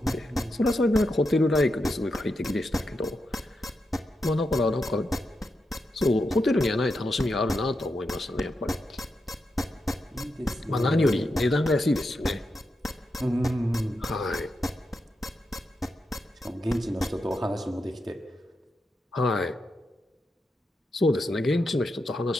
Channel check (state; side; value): normal; both; correlation 0.86